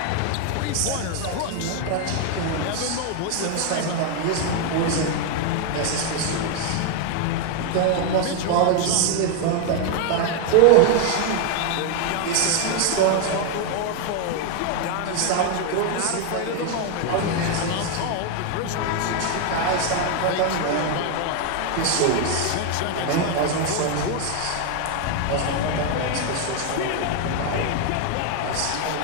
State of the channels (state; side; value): different; both; correlation 0.01